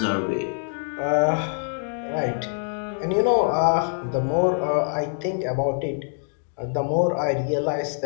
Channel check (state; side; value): silent; right; 62 dB below the other